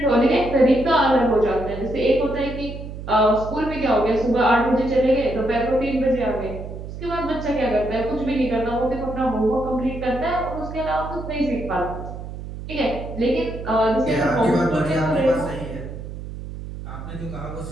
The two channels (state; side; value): noise; right; hum, 10 dB below the sound